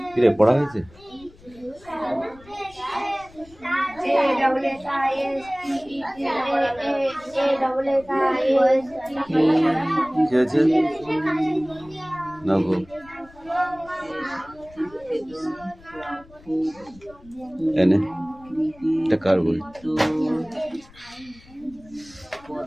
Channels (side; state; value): left; noise; rumble, 24 dB below the sound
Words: কিরে পড়া হয়েছে? কি হয়েছে না গো? এনে এটা কার বই?